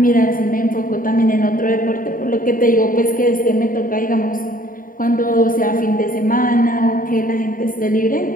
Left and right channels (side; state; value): right; late; 0.40 ms